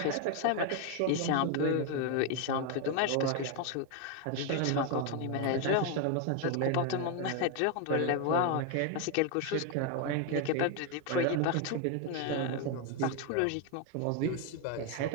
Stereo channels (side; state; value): both; different; correlation 0.01